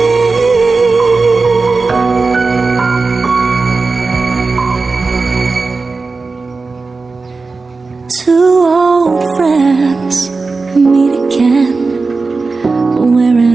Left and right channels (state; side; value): quieter; left; 4.0 dB